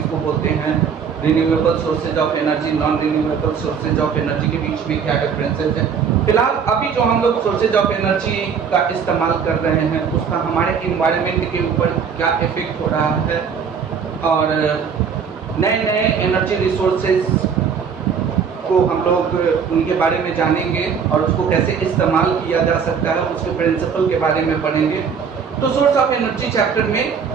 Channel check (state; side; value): quieter; left; 6.6 dB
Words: बोलते हैं, renewable sources of energy, non renewable sources of energy के बीच में क्या डिफरेंसेस है। फिलहाल अभी जो हम लोग सोर्सेज ऑफ एनर्जी का इस्तेमाल कर रहे हैं उसका हमारे इन्वायरमेंट के ऊपर क्या इफेक्ट हो रहा है, और नए नए एनर्जी रिसोर्सेज को हम लोग उनके बारे में जानेंगे और उसको कैसे इस्तेमाल किया जा सकता है, उसके प्रिंसिपल के बारे में पढ़ेंगे। तो सोर्स ऑफ एनर्जी चैप्टर में